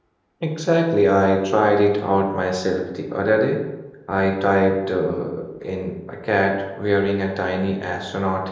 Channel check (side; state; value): both; identical; correlation 1.00